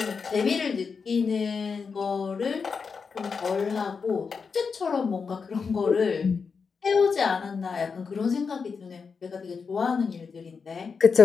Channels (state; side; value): quieter; right; 5.4 dB